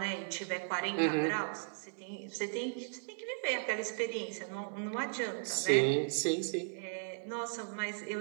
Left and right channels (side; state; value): left; silent; digital silence